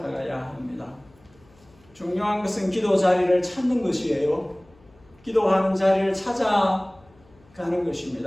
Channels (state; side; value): noise; left; hum, 29 dB below the sound